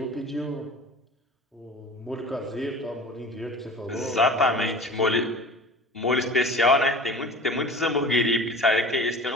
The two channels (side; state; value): both; normal; correlation 0.39